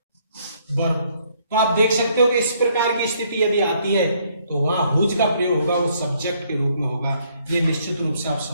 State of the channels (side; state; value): both; inverted; correlation -0.67